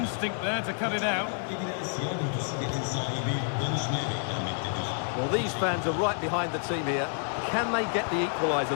there to cut it out. Well, these fans are right behind the team here. Can they get the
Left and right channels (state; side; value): silent; right; digital silence